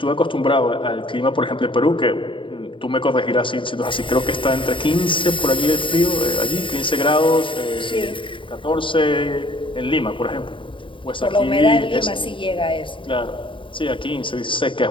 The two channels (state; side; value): late; right; 0.25 ms